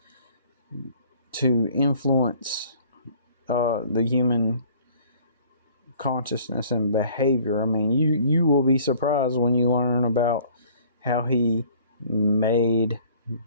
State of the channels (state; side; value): inverted; both; correlation -0.54